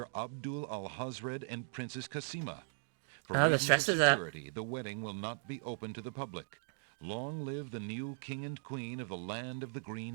Abdul al-Hazred and Princess Kasima. For reasons of security, the wedding will not be open to the public. Long live the new king and queen of the land of the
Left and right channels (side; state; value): left; silent; digital silence